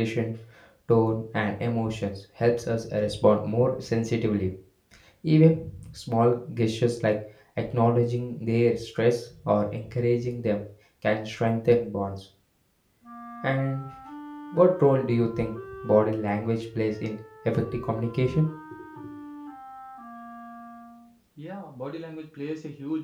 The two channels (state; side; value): identical; both; correlation 1.00